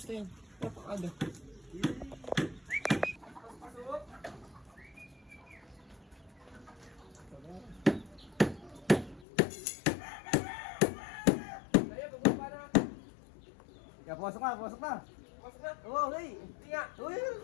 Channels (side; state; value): right; drops out; at 9.2 s